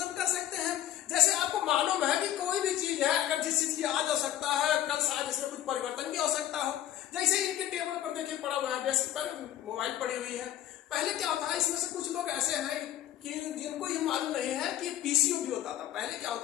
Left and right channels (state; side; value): quieter; right; 12.3 dB